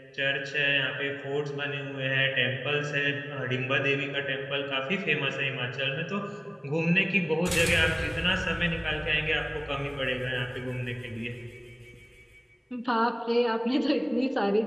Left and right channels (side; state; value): both; identical; correlation 1.00